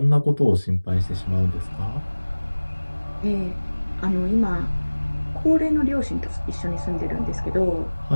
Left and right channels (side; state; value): both; inverted; correlation -1.00